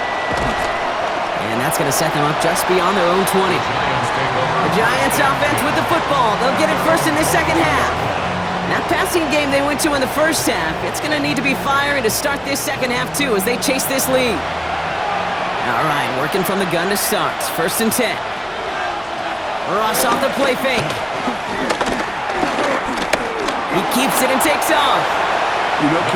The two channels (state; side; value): identical; both; correlation 1.00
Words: And that's going to set them up just beyond their own 20. The Giants offense with the football. They'll get it first in this second half. That passing game they went to in the first half, it's going to need to be fiery to start this second half too as they chase this lead. All right, working from the gun to start. First and 10. Ross off the play fake. He keeps it and takes off. You know,